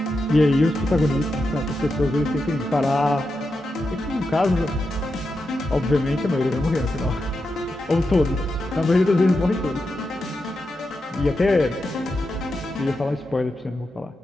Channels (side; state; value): both; normal; correlation 0.87